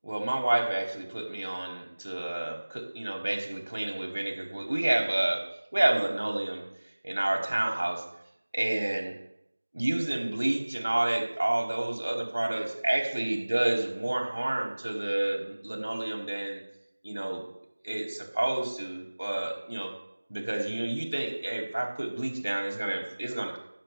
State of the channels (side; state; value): both; inverted; correlation -1.00